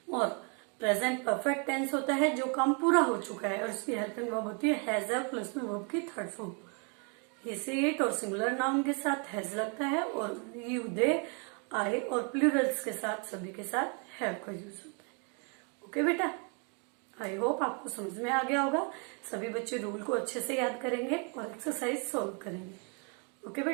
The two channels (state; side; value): quieter; left; 37.1 dB